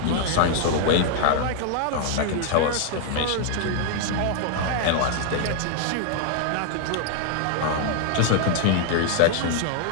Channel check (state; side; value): different; both; correlation 0.00